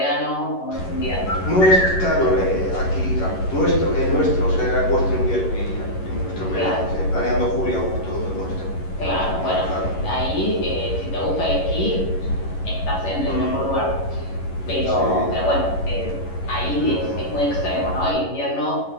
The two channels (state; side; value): late; right; 11 ms